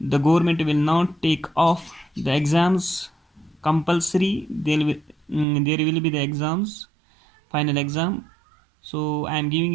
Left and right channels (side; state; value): left; drops out; at 5.5 s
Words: government will not take off the exams compulsory. There will be the exams, final exam. So I am giving